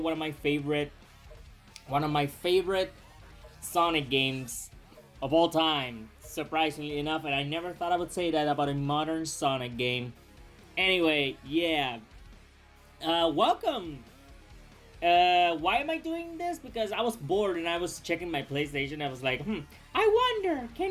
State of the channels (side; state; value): both; identical; correlation 1.00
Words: of my favorite Sonic games of all time, surprisingly enough, and I never thought I would say that about a modern Sonic game. Anyway, yeah. Welcome! Why am I doing this? Because I was bored and I was checking my PlayStation. I was like, I wonder,